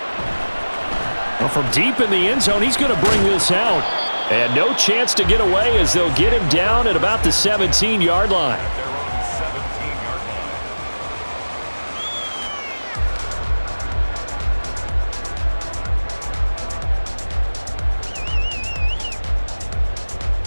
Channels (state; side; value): inverted; both; correlation -1.00